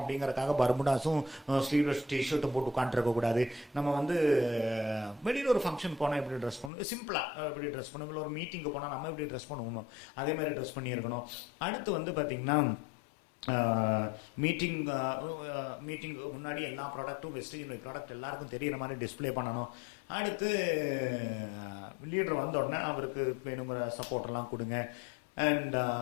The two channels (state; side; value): drops out; right; at 6.7 s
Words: பர்முடாஸும் ஸ்லீவ்லெஸ் டிஷர்ட்டும் போட்டு உட்காந்துருக்கக்கூடாது. நம்ம வெளியில் ஒரு ஃபங்க்ஷன் போனால் எப்படி ட்ரெஸ் பண்ணணும், சிம்பிளாக எப்படி ட்ரெஸ் பண்ணணும், இல்லை ஒரு மீட்டிங்கு போனால் நம்ம எப்படி ட்ரெஸ் பண்ணுவோமோ அதே மாதிரி ட்ரெஸ் பண்ணியிருக்கணும். அடுத்து பார்த்திங்கன்னா மீட்டிங் முன்னாடி எல்லா ப்ராடக்ட்டும் வெஸ்டேஜ் ப்ராடக்ட் எல்லாருக்கும் தெரிகிற மாதிரி டிஸ்பிளே பண்ணணும். அடுத்து லீடர் வந்த உடனே அவருக்கு வேணுங்கிற சப்போர்ட்டெல்லாம் கொடுங்க. அண்ட்